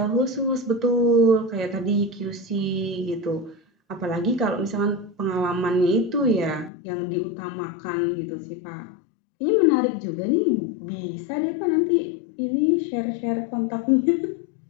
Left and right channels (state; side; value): drops out; right; at 6.7 s